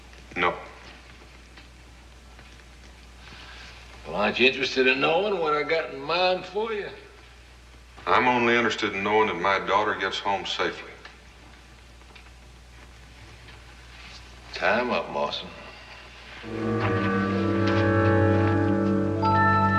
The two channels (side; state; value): both; identical; correlation 1.00